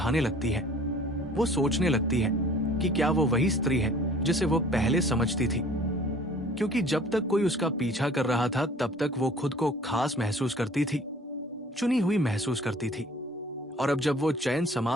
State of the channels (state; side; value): normal; both; correlation 0.51